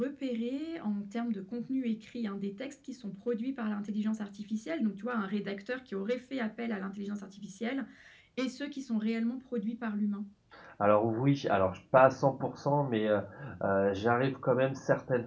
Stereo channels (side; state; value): both; identical; correlation 1.00